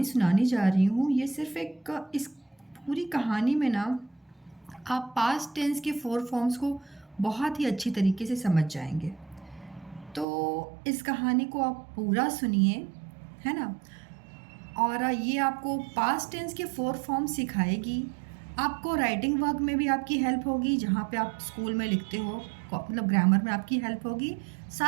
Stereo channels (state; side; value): drops out; left; at 10.2 s